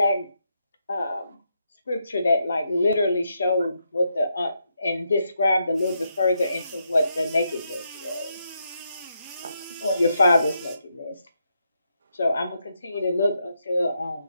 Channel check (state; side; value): inverted; both; correlation -0.81